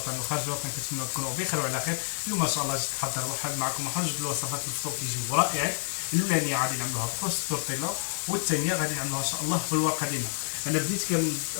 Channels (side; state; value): right; silent; digital silence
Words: وخارج الوطن كنتمنى تكونوا بخير وعلى خير. اليوم ما شاء الله جيت نحضر واحد معكم واحد جوج الوصفات الفطور كيجيو رائعين. الاولانيه غادي نعملوها بكروس التورتيلا، والثانيه غادي نعملوها ان شاء الله بالورقه ديالنا. انا بديت